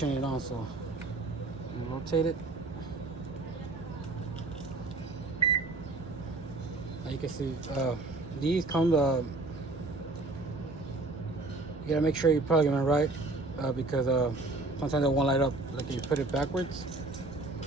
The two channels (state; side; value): quieter; left; 3.1 dB